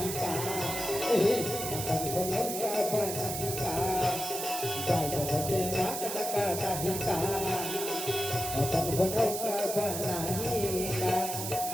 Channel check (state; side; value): noise; right; hiss, 4 dB below the sound